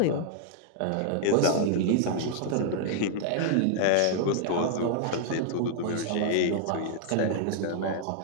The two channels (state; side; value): different; both; correlation -0.01